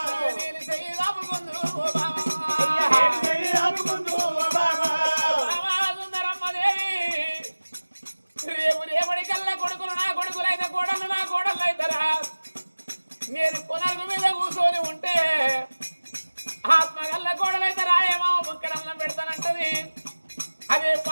నేను చెయ్యి దాపుకుందు ఓ బామా రేపటికల్లా కొడుకులు నా కొడుకులైతే కోడళ్ళు నా కోడళ్ళు అవుతారా నేను పునర్గు మీద కూర్చొని ఉంటే ఆత్మగల్ల కోడలైతే రాయేమో ముక్కడన్నం పెడతానంటది అదే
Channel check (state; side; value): inverted; both; correlation -1.00